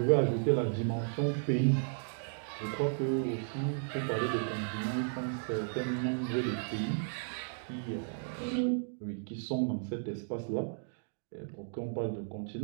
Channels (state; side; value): silent; left; digital silence